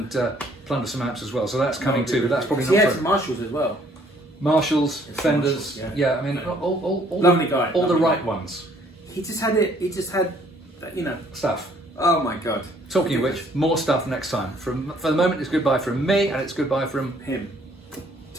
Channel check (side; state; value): both; normal; correlation 0.62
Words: plunder some amps as well. So that's coming too, but that's probably not. He has Marshalls as well. Marshalls, Fenders, I mean, all lovely guy, all the right ones. He just had, you know, stuff. Oh my God! Talking of which, more stuff next time. For the moment, it's goodbye from me, and it's goodbye from him.